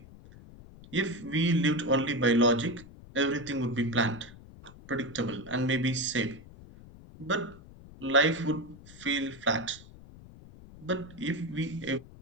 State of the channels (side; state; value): left; noise; rumble, 19 dB below the sound